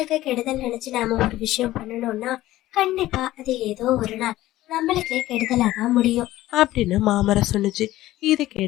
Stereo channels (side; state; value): right; quieter; 15.7 dB